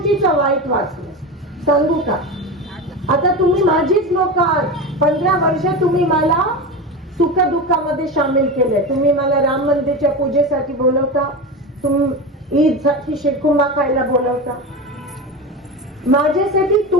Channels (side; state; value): both; normal; correlation 0.24